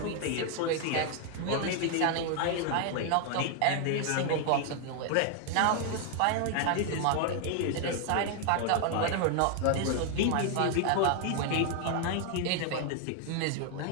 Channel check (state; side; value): different; both; correlation 0.00